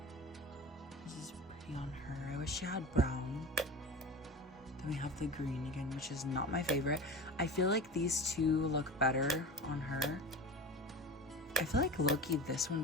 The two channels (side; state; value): both; normal; correlation 0.32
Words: This is pretty on her. I wish she had brown. Then we have the green again, which is not my favorite. I feel like these two look better on her. I feel like low-key this